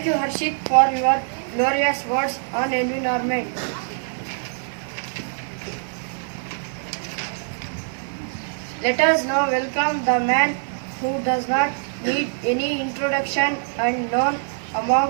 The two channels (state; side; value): silent; left; digital silence